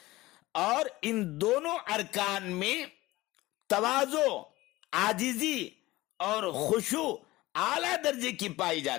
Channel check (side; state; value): right; quieter; 18.8 dB